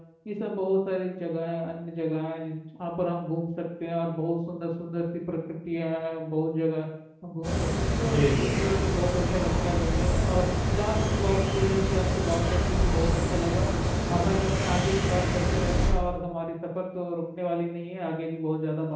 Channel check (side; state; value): both; identical; correlation 1.00